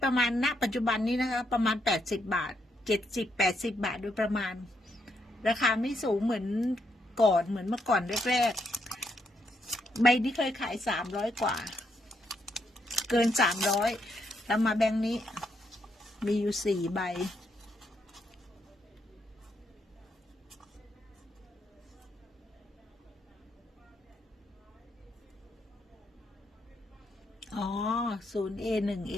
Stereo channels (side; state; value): both; normal; correlation 0.78